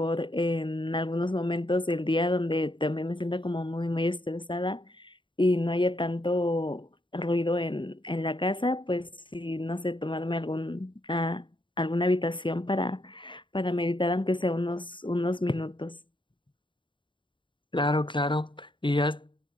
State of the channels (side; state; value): right; late; 0.24 ms